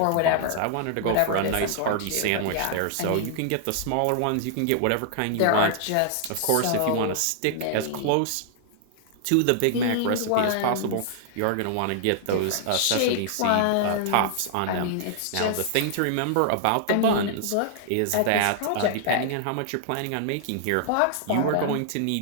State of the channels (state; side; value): different; both; correlation -0.01